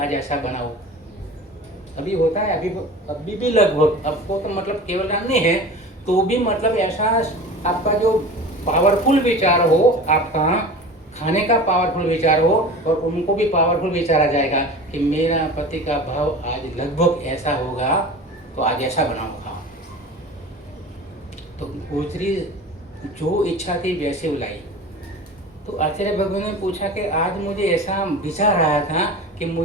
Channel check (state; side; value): normal; both; correlation 0.36